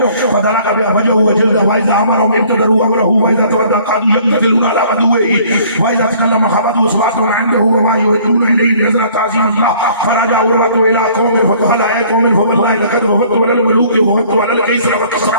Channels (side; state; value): both; inverted; correlation -0.56